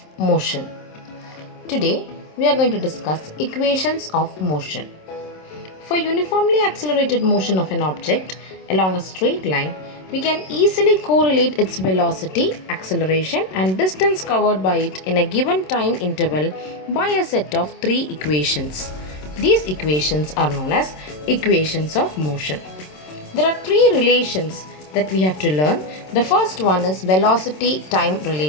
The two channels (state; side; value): late; right; 27 ms